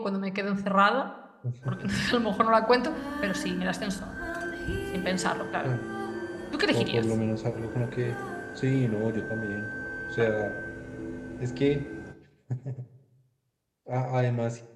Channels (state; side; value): identical; both; correlation 1.00